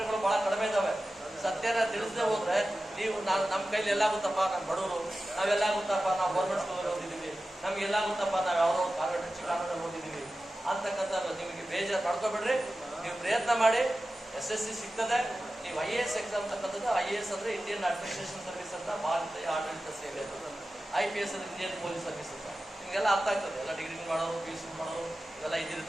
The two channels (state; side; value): normal; both; correlation 0.94